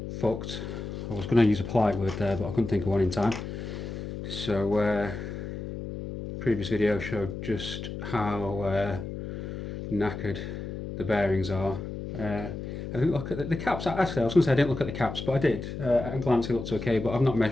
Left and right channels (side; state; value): left; noise; hum, 7 dB below the sound